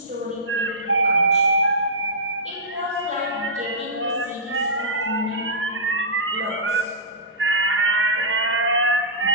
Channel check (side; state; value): both; normal; correlation -0.17